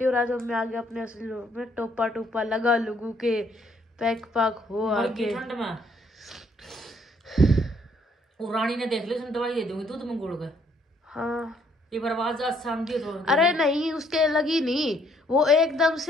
और आज हम आ गए अपने असली रूप में। टोपा लगा लुगू के पैक पाक हो आगे ठंड में। वो रानी ने देख ली, दवाई दे दूंगी दूध में गुड़ के। हाँ ये बर्बाद शाम दी तो। अरे नहीं उसके लगी नहीं, वो एकदम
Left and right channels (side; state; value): both; normal; correlation 0.67